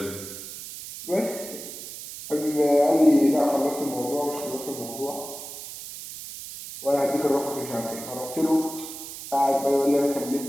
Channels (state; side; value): noise; right; hiss, 11 dB below the sound